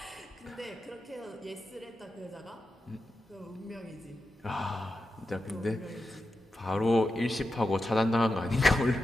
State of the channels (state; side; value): normal; both; correlation 0.90